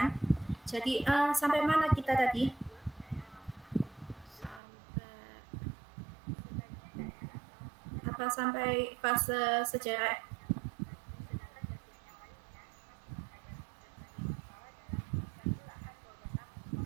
Jadi sampai mana kita tadi? Apa sampai fase sejarah?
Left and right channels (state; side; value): drops out; left; at 4.6 s